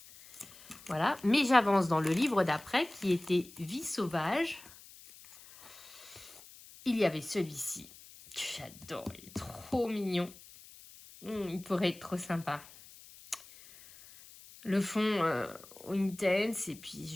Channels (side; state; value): left; noise; hiss, 20 dB below the sound